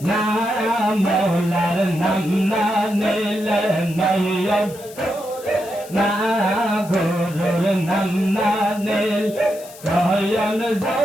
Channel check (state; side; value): noise; left; hiss, 19 dB below the sound